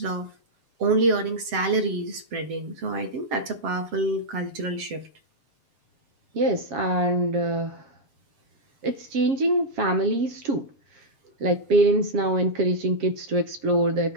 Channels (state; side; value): late; left; 7.7 ms